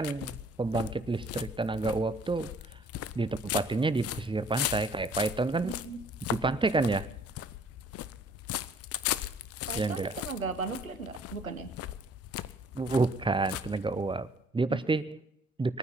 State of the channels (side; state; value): both; normal; correlation 0.57